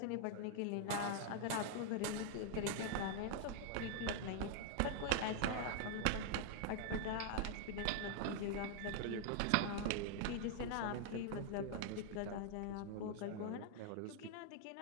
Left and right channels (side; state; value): both; different; correlation 0.00